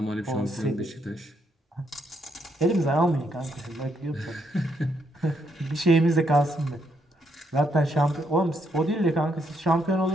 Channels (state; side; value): normal; both; correlation 0.76